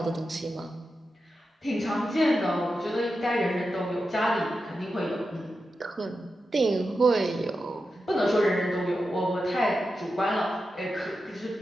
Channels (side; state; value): both; normal; correlation 0.90